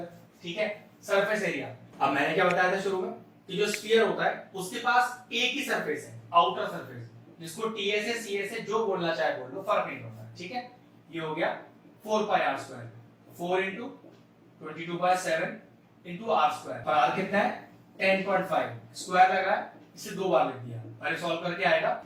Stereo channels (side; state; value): both; identical; correlation 1.00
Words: ठीक है। सरफेस एरिया, अब मैंने क्या बताया था शुरू में कि जो स्फीयर होता है उसके पास एक ही सरफेस है, आउटर सरफेस, जिसको टीएसए सीएसए जो बोलना चाहे बोल लो, फर्क नहीं पड़ता, ठीक है। ये हो गया 4 pi r square, 4 into 22/7 into r square, पर r कितना है? 10.5, स्क्वायर लगा है, इसे 2 बार लिख दिया, पहले सॉल्व करके आएगा